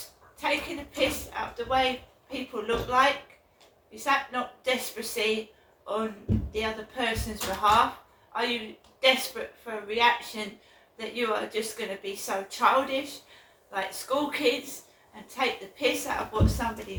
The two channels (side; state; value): both; identical; correlation 1.00